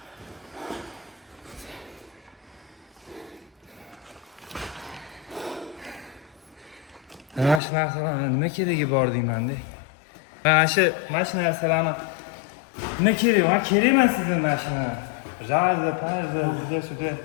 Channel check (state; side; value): drops out; right; at 7.6 s